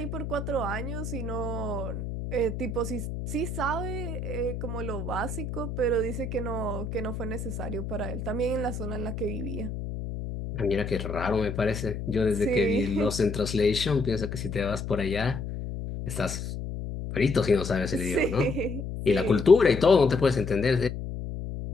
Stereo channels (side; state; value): left; noise; hum, 6 dB below the sound